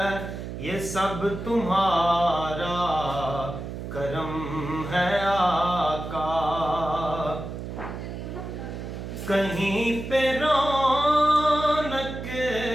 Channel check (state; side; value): noise; right; hum, 8 dB below the sound